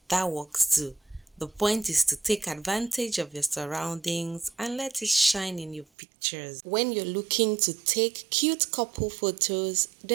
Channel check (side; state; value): left; drops out; at 5.9 s